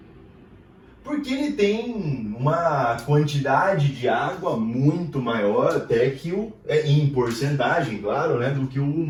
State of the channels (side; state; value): both; identical; correlation 1.00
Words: porque ele tem uma quantidade de água muito maior até que em porcentagem, claro, né, do que o